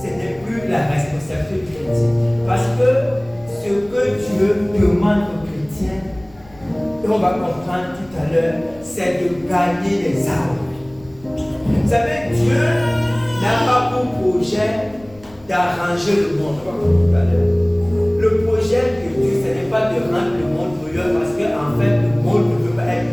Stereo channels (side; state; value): left; noise; rumble, 24 dB below the sound